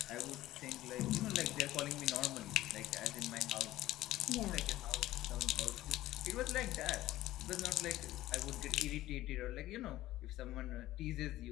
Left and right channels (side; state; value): right; quieter; 15.5 dB